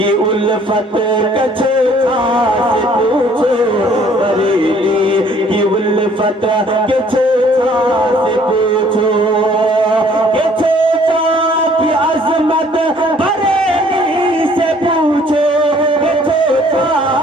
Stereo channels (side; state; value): both; normal; correlation 0.59